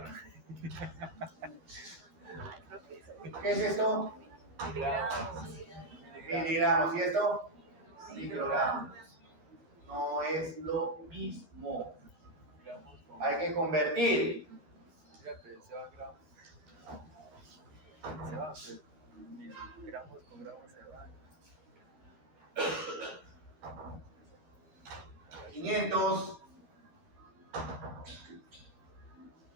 ¿Qué es esto? Miligramos. Miligramos. ¿Y esto? Microgramos. No es lo mismo. Hay que convertir. Fíjate, se va gramos. Se va, pues, gramos con gramos se va. 500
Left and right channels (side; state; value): left; late; 13 ms